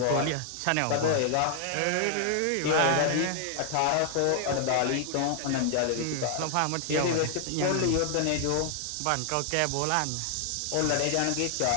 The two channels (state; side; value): different; both; correlation 0.00